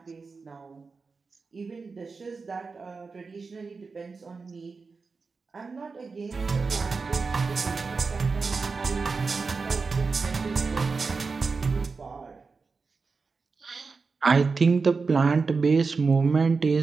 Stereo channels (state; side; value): quieter; left; 4.5 dB